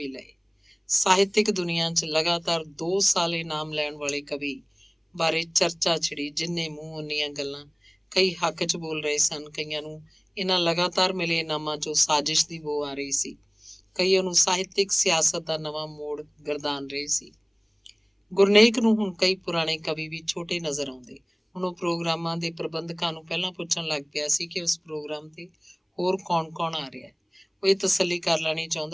ਲਏ। ਸਾਹਿਤਕ ਦੁਨੀਆ 'ਚ ਲਗਾਤਾਰ 2 ਸਾਲ ਇਨਾਮ ਲੈਣ ਵਾਲੇ ਕਵੀ ਬਾਰੇ ਚਰਚਾ ਛਿੜੀ। ਜਿੰਨੇ ਮੂੰਹ ਉਨੀਆਂ ਗੱਲਾਂ। ਕਈ ਹੱਕ 'ਚ ਬੋਲ ਰਹੇ ਸਨ। ਕਈਆਂ ਨੂੰ ਇਹਨਾਂ ਲਗਾਤਾਰ ਮਿਲੇ ਇਨਾਮਾਂ 'ਚੋਂ ਸਾਜ਼ਿਸ਼ ਦੀ ਬੋ ਆ ਰਹੀ ਸੀ। ਕਈ ਉਹਨੂੰ ਸਾਹਿਤਕ ਸਿਆਸਤ ਦਾ ਨਵਾਂ ਮੋੜ ਗਰਦਾਨ ਰਹੇ ਸੀ। ਗੁਰਨੇਕ ਨੂੰ ਹੁਣ ਕਈ ਪੁਰਾਣੇ ਕਵੀ ਵੀ ਛੋਟੇ ਨਜ਼ਰ ਆਉਂਦੇ। ਹੁਣ ਉਹ ਪ੍ਰੋਗਰਾਮਾਂ ਦੇ ਪ੍ਰਬੰਧਕਾਂ ਨੂੰ ਪਹਿਲਾਂ ਪੁੱਛਣ ਲੱਗ ਪਿਆ ਸੀ ਕਿ ਉਸ ਪ੍ਰੋਗਰਾਮ ਤੇ ਹੋਰ ਕੌਣ ਆ ਰਿਹਾ ਹੈ। ਉਹ ਇਹ ਤਸੱਲੀ ਕਰ ਲੈਣੀ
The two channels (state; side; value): identical; both; correlation 1.00